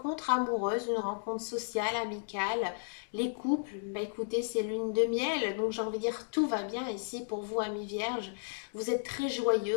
amoureuse, une rencontre sociale, amicale. Les couples, bah écoutez, c'est lune de miel, donc j'ai envie de dire tout va bien ici pour vous, amis vierges. Vous êtes très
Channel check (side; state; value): right; silent; digital silence